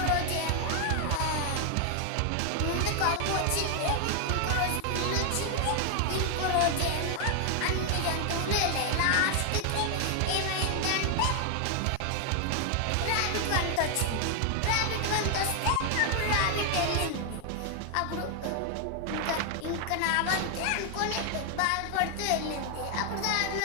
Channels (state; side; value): different; both; correlation 0.00